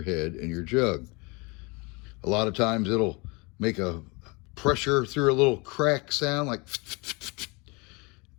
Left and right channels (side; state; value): right; quieter; 28.0 dB